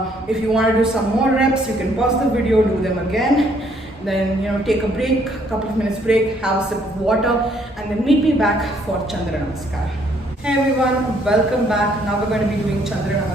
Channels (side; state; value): both; normal; correlation 0.66